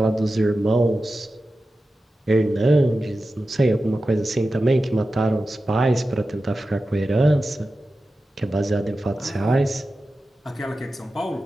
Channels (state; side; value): normal; both; correlation 0.93